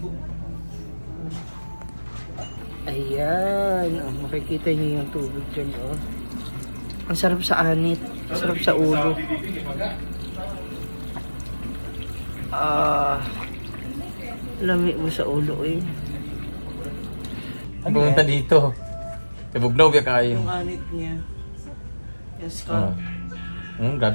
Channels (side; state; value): both; inverted; correlation -1.00